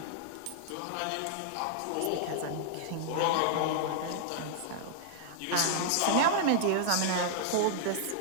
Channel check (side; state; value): both; different; correlation -0.01